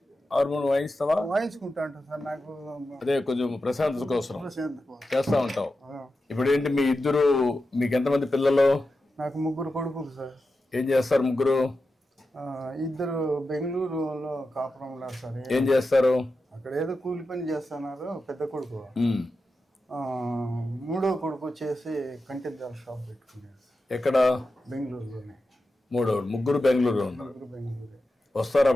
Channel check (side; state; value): both; normal; correlation 0.91